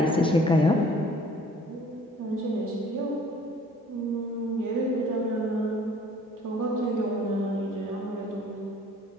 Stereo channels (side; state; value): both; normal; correlation 0.54